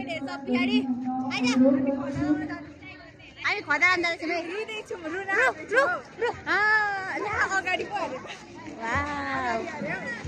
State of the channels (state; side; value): identical; both; correlation 1.00